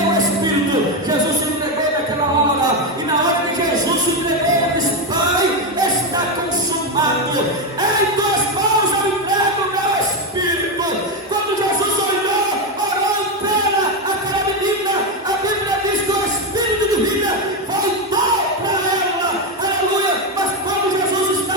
o Espírito, Jesus se entregou naquela hora, e na hora que Jesus se entregou, ele disse: Pai, está consumado, em tuas mãos eu entrego o meu Espírito. Quando Jesus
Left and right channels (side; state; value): both; normal; correlation 0.09